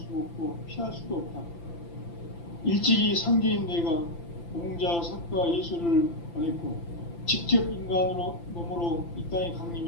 없고 피할 수도 없다. 일찍이 상제인 내가 공자, 석가, 예수를 보냈고 직접 인간으로 몸으로 이 땅에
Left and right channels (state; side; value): late; right; 5.9 ms